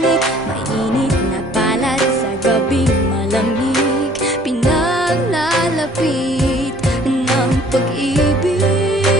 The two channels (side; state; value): both; normal; correlation 0.56